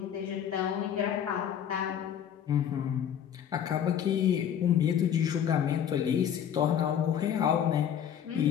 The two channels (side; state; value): right; quieter; 9.2 dB